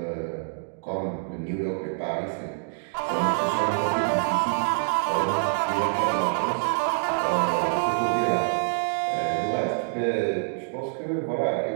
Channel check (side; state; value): left; silent; digital silence